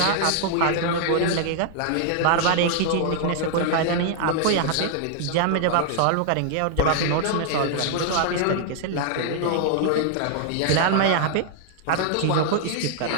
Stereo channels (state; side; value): different; both; correlation -0.01